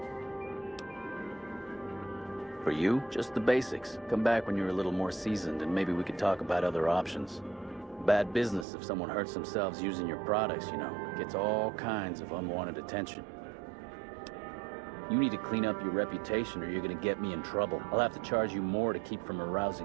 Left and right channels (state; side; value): drops out; left; at 8.7 s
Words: For you? Just the basics. Come back when you're a little more seasoned and maybe we could talk about other options. Bad business if someone hurts themselves using your products, you know. Gets all kinds of unwanted attention. You need to clean up your reputation or you're gonna get me in trouble. I'll have to charge you more to keep from